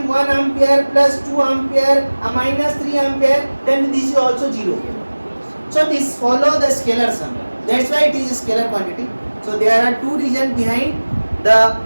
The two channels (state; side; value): inverted; both; correlation -1.00